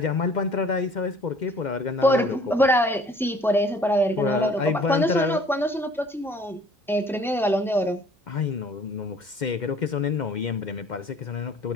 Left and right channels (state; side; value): normal; both; correlation 0.54